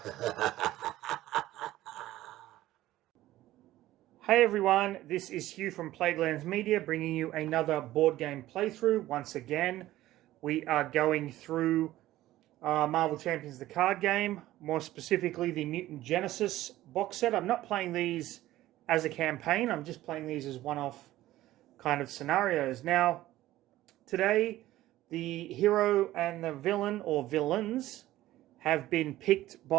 Hey everyone, this is Hugh from Plaguelands Media bringing you another board game playthrough. Once again, we are going through Marvel Champions the card game, more specifically the Mutant Genesis box set. I'm not playing these as a campaign, I'm just playing these as one-off kind of scenarios. Now, today, the hero and the villain, or villains, have been picked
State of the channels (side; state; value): left; quieter; 15.3 dB